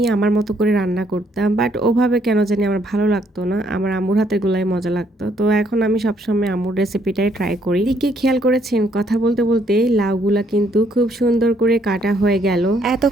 আমার মতো করে রান্না করতাম, বাট ওভাবে কেন জানি আমার ভালো লাগতো না, আমার আম্মুর হাতের গুলাই মজা লাগতো। তো এখন আমি সবসময় আম্মুর রেসিপিটাই ট্রাই করি। দিকে খেয়াল করেছেন, কথা বলতে বলতে লাউগুলা কিন্তু খুব সুন্দর করে কাটা হয়ে গেল।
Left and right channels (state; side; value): normal; both; correlation 0.69